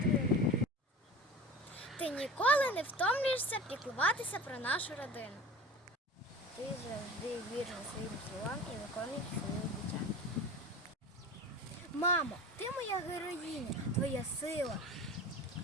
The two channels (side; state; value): both; normal; correlation 0.35